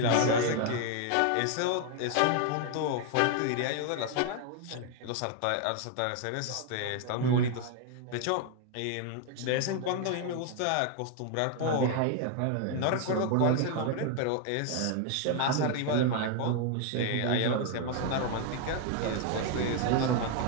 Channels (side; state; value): both; different; correlation 0.01